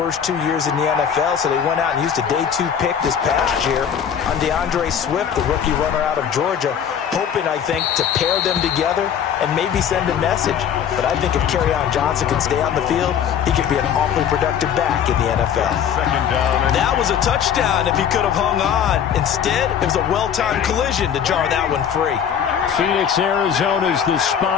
2 years in the NFL, so they went out and used a day 2 pick this past year on DeAndre Swift, the rookie runner out of Georgia, hoping, I think, to pair them together and maybe send a message. But I think if Kerryon Johnson can stay on the field, he could be an awfully productive back in the NFL. That was a touchdown if he could have hung on. Instead, it was a well-timed collision to jar that one free. Phoenix, Arizona's the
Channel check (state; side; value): quieter; right; 8.4 dB